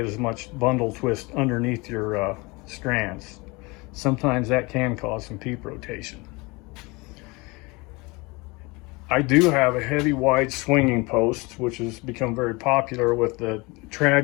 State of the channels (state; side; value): quieter; right; 25.6 dB